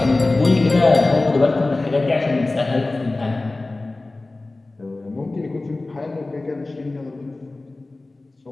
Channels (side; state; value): right; quieter; 3.1 dB